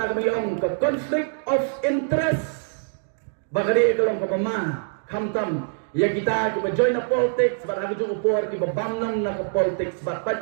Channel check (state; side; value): silent; left; digital silence